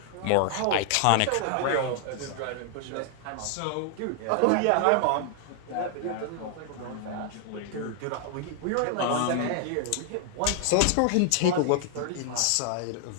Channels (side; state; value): both; different; correlation 0.00